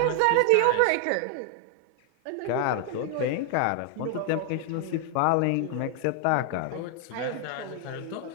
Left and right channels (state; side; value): different; both; correlation 0.00